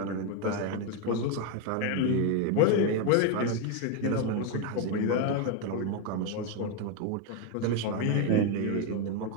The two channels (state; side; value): different; both; correlation 0.02